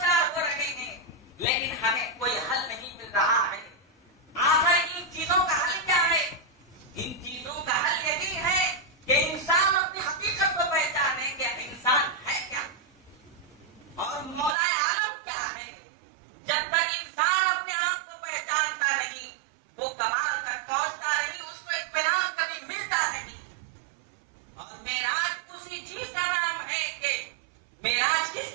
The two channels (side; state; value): left; drops out; at 14.6 s